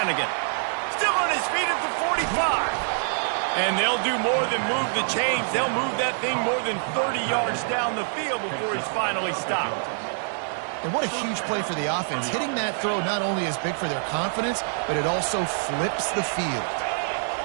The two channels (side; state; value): left; silent; 61 dB below the other